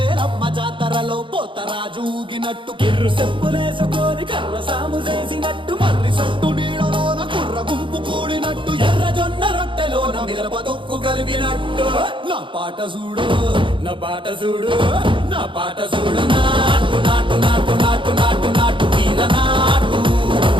జాతరలో పోతరాజు ఊగినట్టు కిర్రు చెప్పులేసుకొని కర్ర సాము చేసినట్టు మర్రి సొట్టు నీడలోన కుర్ర గుంపు కూడినట్టు ఎర్ర జొన్న రొట్టెలోన మిరప దొక్కు కలిపినట్టు నా పాట చూడు నా పాట చూడు నా పాట చూడు నాటు నాటు నాటు నాటు నాటు నాటు వీర నాటు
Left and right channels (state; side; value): late; left; 0.24 ms